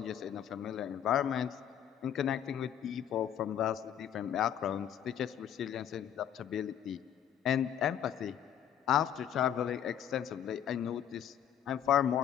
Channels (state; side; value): quieter; right; 9.7 dB